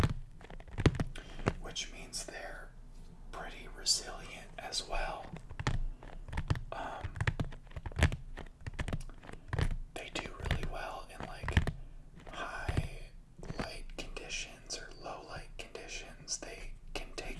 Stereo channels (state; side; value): identical; both; correlation 1.00